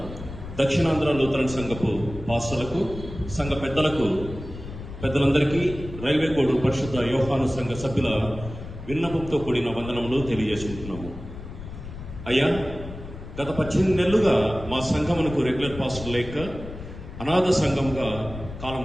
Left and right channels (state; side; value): noise; left; rumble, 11 dB below the sound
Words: దక్షిణాంధ్ర లూథరన్ సంఘపు పాస్టర్లకు, సంఘ పెద్దలందరికీ రైల్వే కోడ్ పరిశుద్ధ యోహాను సంఘ సభ్యుల విన్నపంతో కూడిన వందనములు తెలియజేసుకుంటున్నాము. అయ్యా, గత 18 నెలలుగా మా సంఘమునకు రెగ్యులర్ పాస్టర్ లేక అనాథ సంఘంగా కాలం